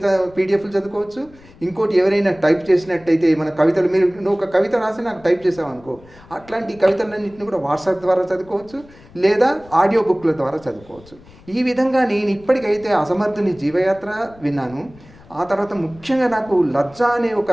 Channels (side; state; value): left; noise; rumble, 24 dB below the sound